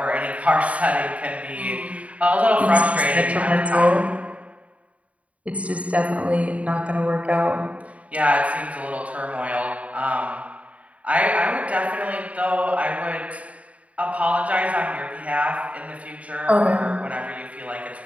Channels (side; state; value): left; late; 0.066 ms